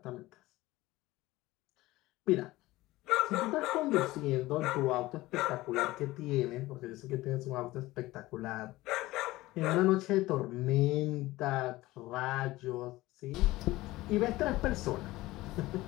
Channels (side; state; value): right; quieter; 18.3 dB